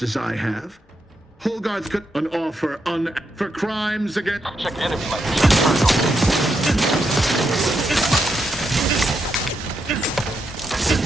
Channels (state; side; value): normal; both; correlation 0.82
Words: as I have? Hogarth could an offer for crimes against... Check enemy light.